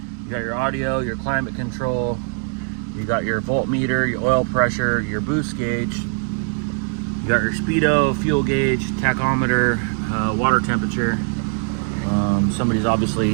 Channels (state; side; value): silent; left; 58 dB below the other